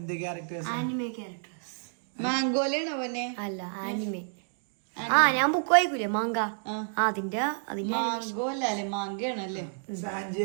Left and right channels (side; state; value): left; silent; digital silence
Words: ക്യാരക്ടേഴ്സ്? മാംഗോലാണോ അവനെ? അല്ല, ആനിമേ. ഞാൻ ബുക്ക് വായിക്കൂലേ, മാങ്ക. അതിന്റെ മാംഗോല്ലേ? മാങ്കയാണല്ലേ? സാഞ്ചി